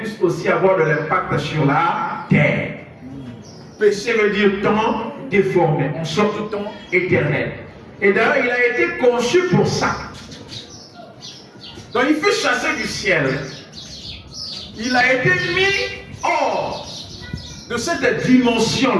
aussi avoir de l'impact sur la terre. Péché veut dire temps déformé, en sorte de temps éternel. Et d'ailleurs, il a été conçu pour ça. Donc il fut chassé du ciel. Il a été mis hors de cette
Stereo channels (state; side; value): identical; both; correlation 1.00